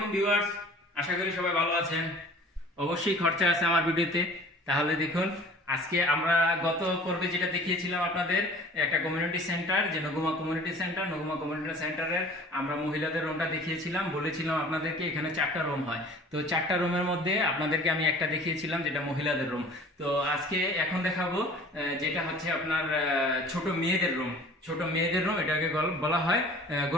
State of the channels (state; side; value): normal; both; correlation 0.46